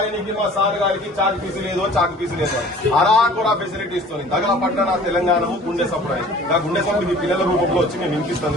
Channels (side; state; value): both; normal; correlation 0.48